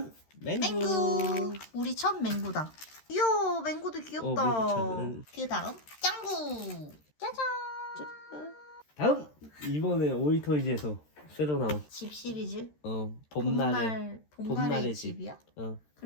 맹구. 맹구. 우리 첫 맹구다. 이야 맹구도 귀엽다. 맹구 그 다음 짱구. 짜잔. 다음 이번에 오이토이즈에서 새로 나온 집 시리즈. 봄날의 봄날의 집이야? 어.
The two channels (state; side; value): late; right; 13 ms